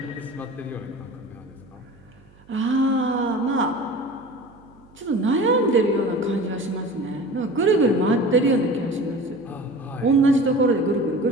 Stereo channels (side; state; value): right; noise; hum, 27 dB below the sound